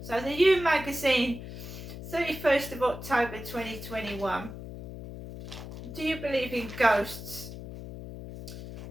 So the You magazine, 31st of October 2021. Do you believe in ghosts?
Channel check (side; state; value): left; noise; hum, 11 dB below the sound